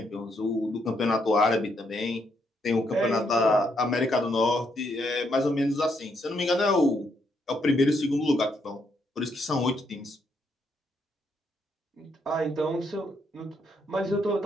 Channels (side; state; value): both; normal; correlation 0.75